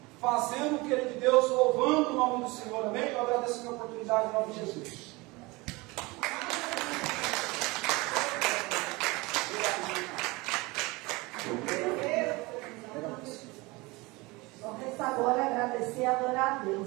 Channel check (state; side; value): quieter; left; 23.7 dB